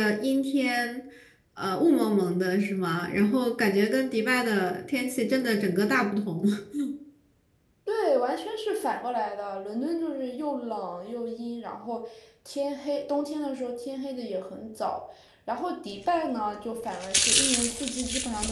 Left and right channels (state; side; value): identical; both; correlation 1.00